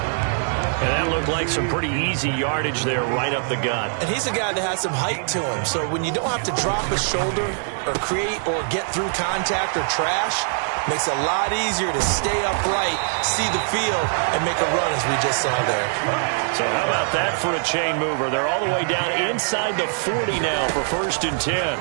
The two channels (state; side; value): silent; left; 64 dB below the other